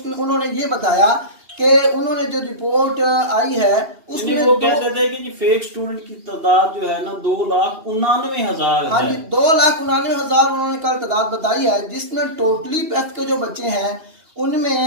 उन्होंने ये बताया कि उन्होंने जो रिपोर्ट आई है उसमें वो कहते थे कि फेक स्टूडेंट की तादाद जो है ना 2,99,000 है। हाँ जी, 2,99,000 उन्होंने कल तादाद बताई है, जिसमें टोटली पैफ के जो बच्चे हैं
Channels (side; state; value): left; late; 3.0 ms